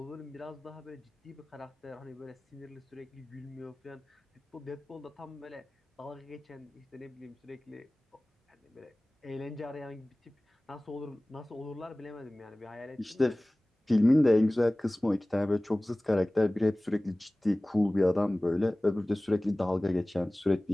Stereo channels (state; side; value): normal; both; correlation 0.98